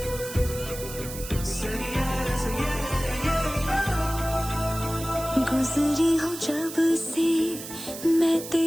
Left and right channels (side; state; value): right; noise; hiss, 11 dB below the sound